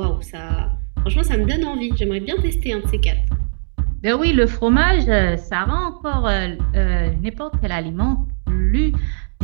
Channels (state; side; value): silent; left; digital silence